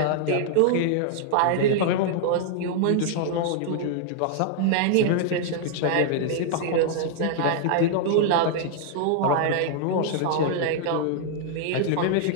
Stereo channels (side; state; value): both; different; correlation -0.01